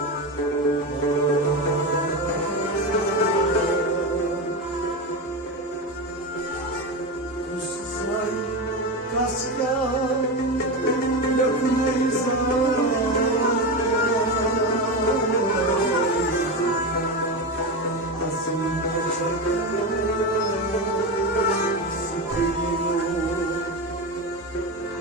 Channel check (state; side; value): normal; both; correlation 0.18